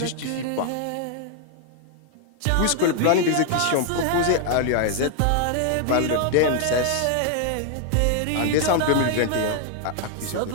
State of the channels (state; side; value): different; both; correlation 0.00